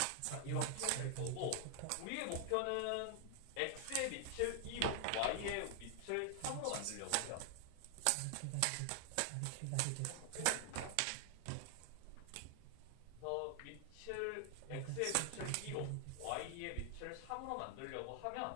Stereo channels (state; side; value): different; both; correlation 0.00